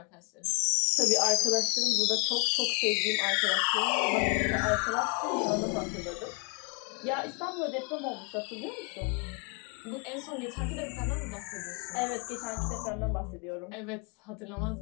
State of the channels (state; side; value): quieter; right; 35.2 dB